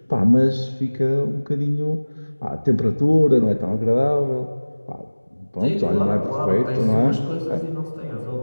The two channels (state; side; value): inverted; both; correlation -1.00